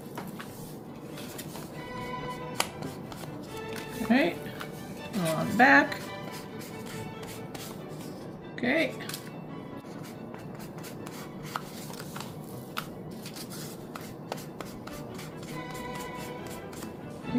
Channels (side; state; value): both; identical; correlation 1.00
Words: Okay, a little on the back. Okay.